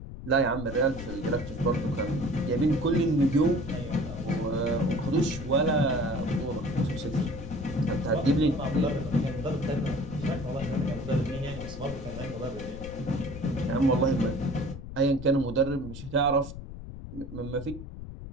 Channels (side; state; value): left; noise; rumble, 11 dB below the sound